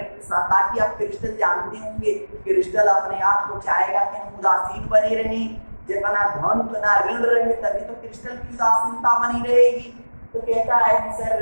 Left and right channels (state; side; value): inverted; both; correlation -1.00